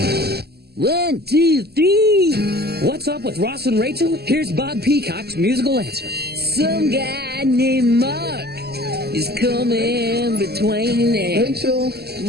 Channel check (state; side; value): late; left; 0.46 ms